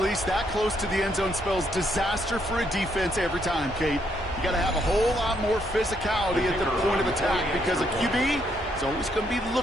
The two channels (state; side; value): normal; both; correlation 0.73